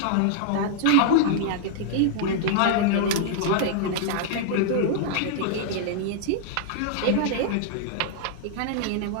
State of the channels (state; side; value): different; both; correlation -0.01